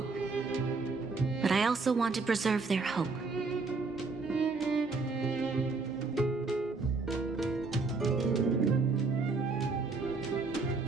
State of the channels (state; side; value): quieter; left; 4.0 dB